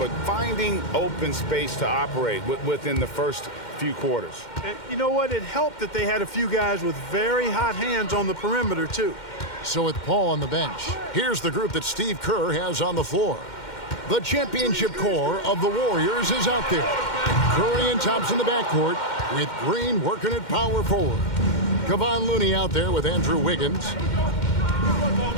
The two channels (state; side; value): late; right; 2.1 ms